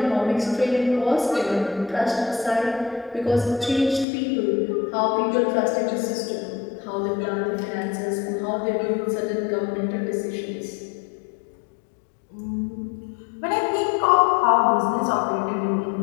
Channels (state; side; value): drops out; right; at 4.0 s